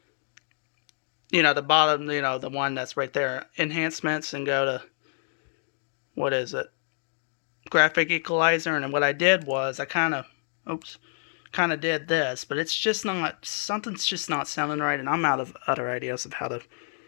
the bottom, the one that's right there, enhancements, and go to, what is it? graphic equalizer, and what I did was I kind of did this, but it's just not, something's just not sounding right, and I'm out of other ideas of how to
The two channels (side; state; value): right; silent; digital silence